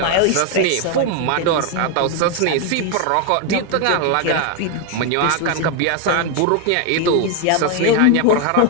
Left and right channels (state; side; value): different; both; correlation 0.01